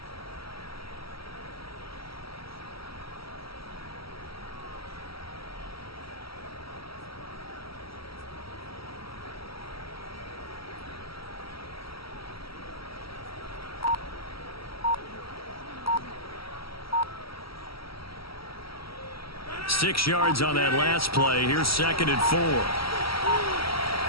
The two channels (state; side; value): late; right; 0.75 ms